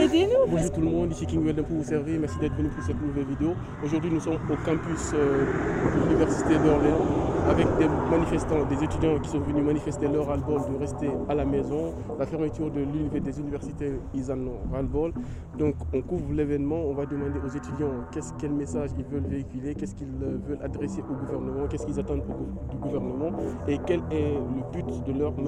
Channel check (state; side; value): identical; both; correlation 1.00